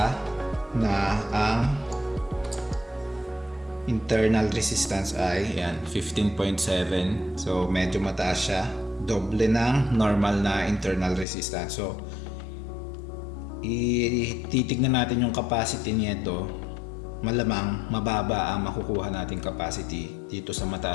na ang internal resistance ay yan 15.7. So medyo mataas siya, doble ng normal na internal resistance. So titignan natin yung capacity nito. Malamang mababa ang makukuha nating capacity dito sa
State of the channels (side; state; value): right; drops out; at 11.2 s